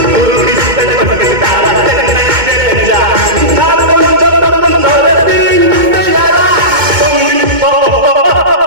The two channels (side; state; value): left; late; 2.2 ms